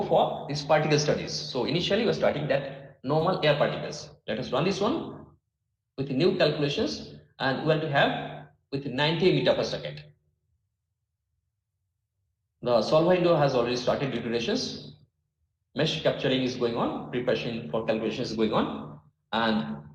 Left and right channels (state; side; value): identical; both; correlation 1.00